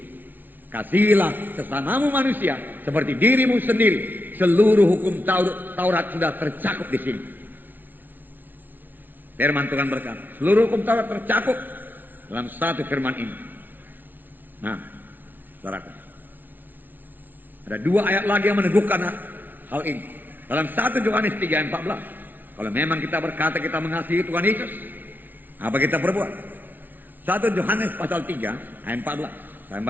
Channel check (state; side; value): late; left; 0.087 ms